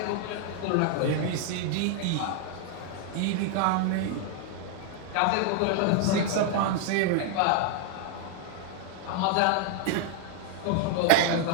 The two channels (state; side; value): different; both; correlation 0.00